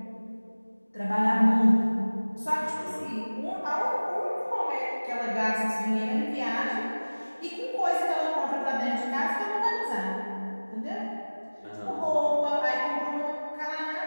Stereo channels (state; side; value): inverted; both; correlation -1.00